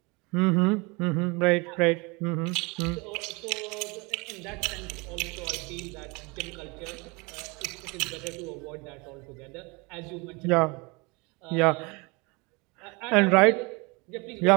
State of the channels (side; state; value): left; quieter; 27.7 dB